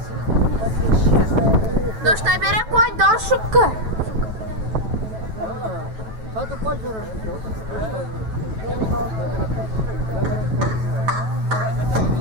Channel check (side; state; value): left; late; 9.1 ms